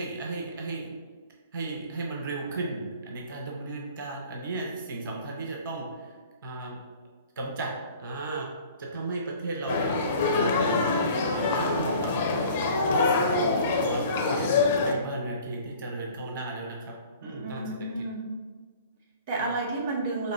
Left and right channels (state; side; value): inverted; both; correlation -0.48